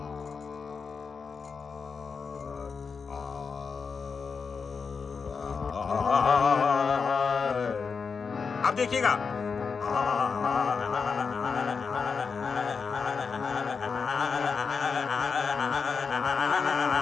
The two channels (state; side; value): quieter; right; 5.4 dB